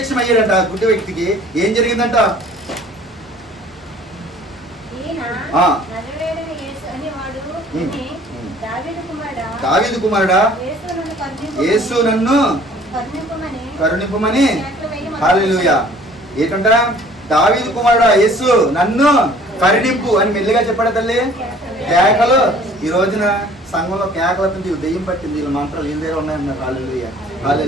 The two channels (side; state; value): both; normal; correlation 0.52